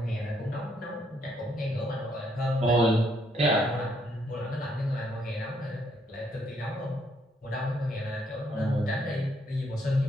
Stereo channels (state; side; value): normal; both; correlation 0.72